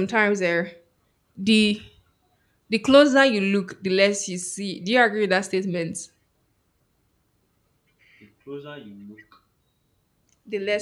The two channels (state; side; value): identical; both; correlation 1.00